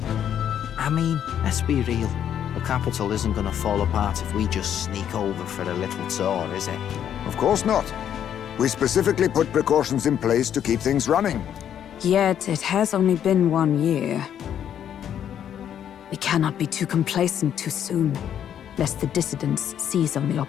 I mean, let's be real. The capital isn't gonna fall apart if we just sneak over for a little tour, is it? Of course not. We specifically put precautions in place to keep things running. Yet it has only been 1 year. We cannot be too complacent too soon, lest the dissidents seize on the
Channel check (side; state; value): right; quieter; 9.6 dB